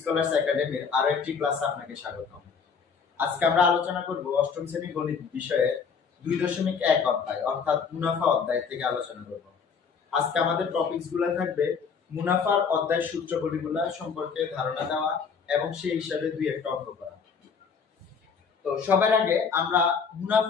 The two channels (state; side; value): quieter; right; 6.0 dB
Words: একাডেমির আরো একটি ক্লাসে আপনাকে স্বাগতম। আজকে আমরা আলোচনা করব অষ্টম শ্রেণী গণিত বিষয়ে 2.1 অধ্যায় অর্থাৎ মুনাফা অধ্যায় থেকে আলোচনা করব। আজকে আমাদের টপিকস গুলো থাকবে মুনাফার অধ্যায় সূত্রগুলো সম্পর্কে ধারণা দেওয়া এবং সেই হিসাবে দুই একটা অঙ্ক করা। তো সবার আগে আমরা